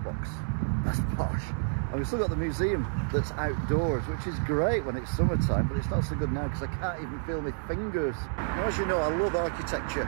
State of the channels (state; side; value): silent; left; 58 dB below the other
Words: box. That's posh. And we've still got the museum that's outdoors, which is great when it's summertime, but it's not so good now because I can't even feel my fingers. Now, as you know, I love